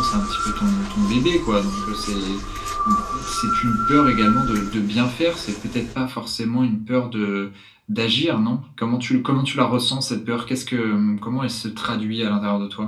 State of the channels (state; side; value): identical; both; correlation 1.00